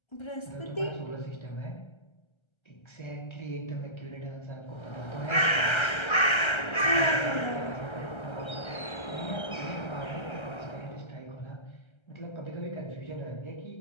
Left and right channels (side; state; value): right; late; 1.3 ms